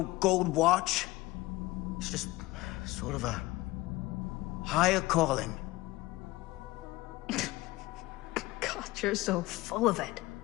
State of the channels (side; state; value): right; quieter; 19.6 dB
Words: gold watch. It's just sort of a higher calling. God, you're so full of it.